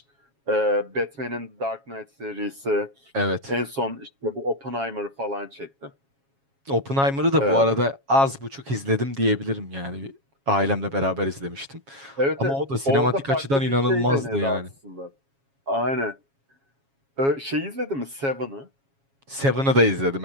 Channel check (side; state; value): left; late; 7.3 ms